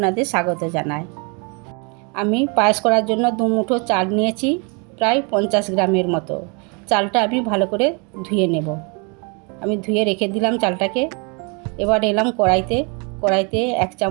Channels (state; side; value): quieter; left; 33.4 dB